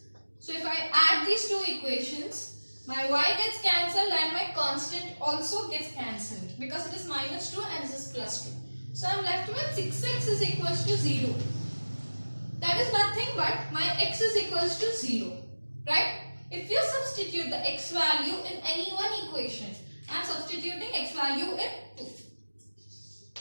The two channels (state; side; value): inverted; both; correlation -1.00